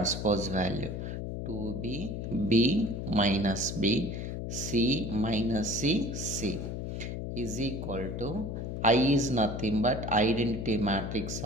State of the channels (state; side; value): noise; left; hum, 5 dB below the sound